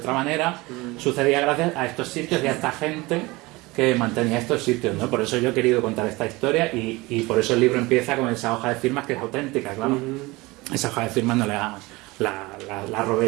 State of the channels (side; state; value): left; quieter; 22.3 dB